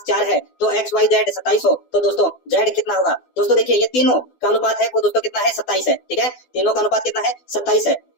है तो x y z 27 हो, तो दोस्तों z कितना होगा। दोस्तों देखिए ये तीनों का अनुपात है वो दोस्तों कितना है 27 है, ठीक है, तीनों का अनुपात कितना है 27 है।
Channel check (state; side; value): late; right; 12 ms